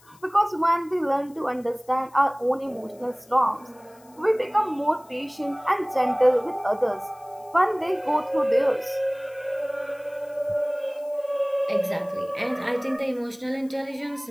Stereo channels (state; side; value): noise; left; hiss, 28 dB below the sound